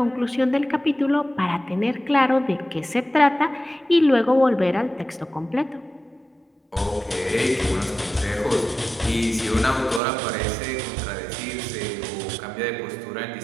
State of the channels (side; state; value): left; drops out; at 10.0 s